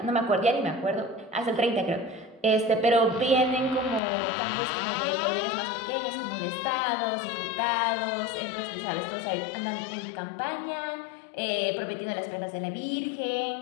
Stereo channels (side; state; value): right; drops out; at 4.0 s